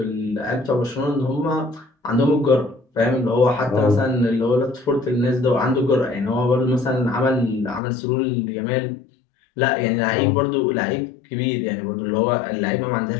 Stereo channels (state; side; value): drops out; right; at 7.8 s